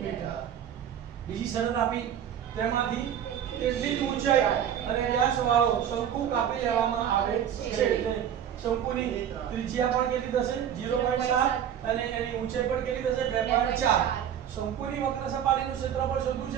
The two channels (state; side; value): quieter; left; 9.4 dB